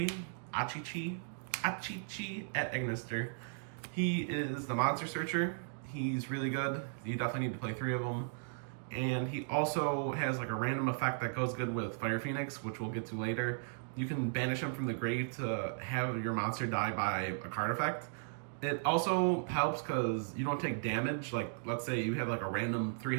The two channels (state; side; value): silent; left; digital silence